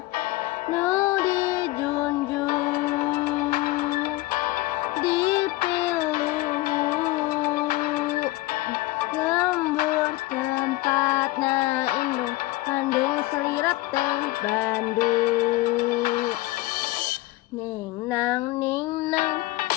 nu dijunjung dipilu lembur tempatna indung kandung selirat teh Bandung ning nang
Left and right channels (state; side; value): quieter; right; 19.2 dB